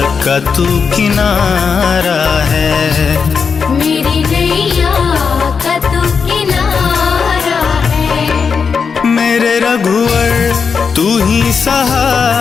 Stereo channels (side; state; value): right; quieter; 5.8 dB